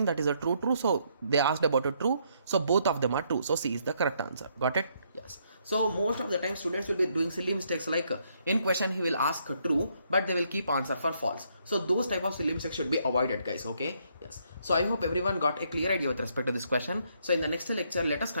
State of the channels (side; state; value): both; inverted; correlation -0.72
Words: that is a true. So they asked about a true, so both of them are true. So C is the correct answer. Got it? Yes. So most of the time students will be doing silly mistakes, like in question he will ask true, but they will keep answer for false. So those type of silly mistakes should be avoided, guys. Okay, yes. So I hope everyone got a clear idea with respect to this question. So in the next lecture, let us